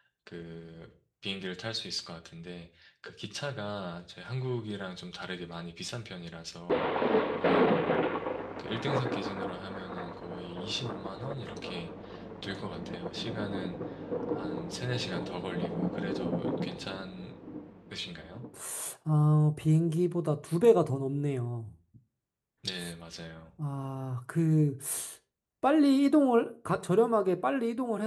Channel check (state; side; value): identical; both; correlation 1.00